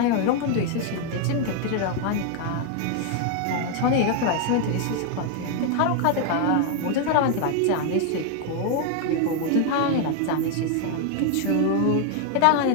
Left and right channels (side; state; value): both; different; correlation 0.00